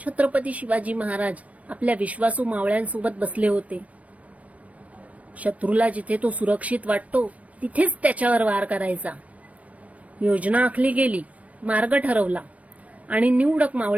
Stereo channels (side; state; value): left; late; 0.066 ms